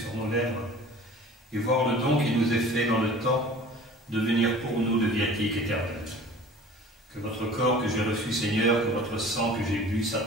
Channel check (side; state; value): both; normal; correlation 0.44